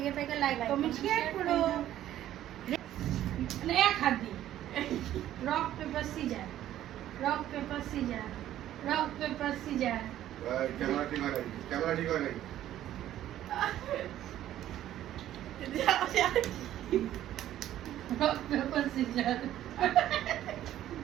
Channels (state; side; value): quieter; left; 12.6 dB